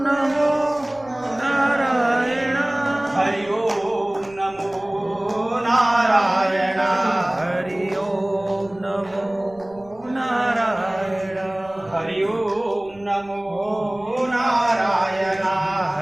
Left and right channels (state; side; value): noise; right; rumble, 25 dB below the sound